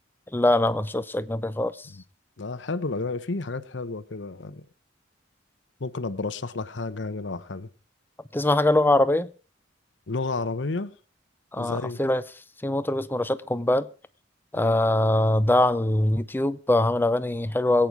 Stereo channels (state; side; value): normal; both; correlation 0.79